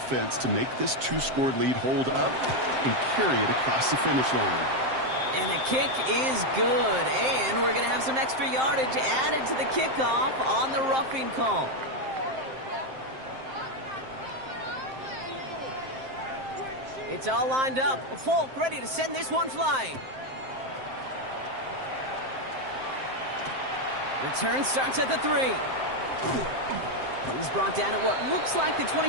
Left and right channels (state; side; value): late; left; 7.6 ms